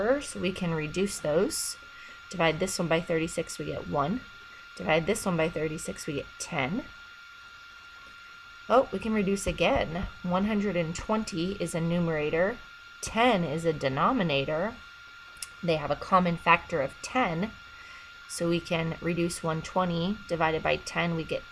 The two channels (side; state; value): both; identical; correlation 1.00